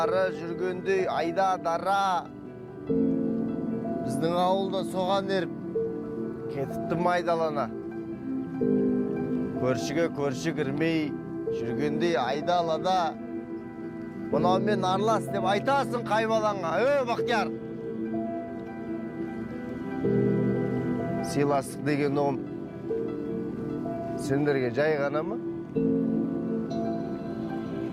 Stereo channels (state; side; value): identical; both; correlation 1.00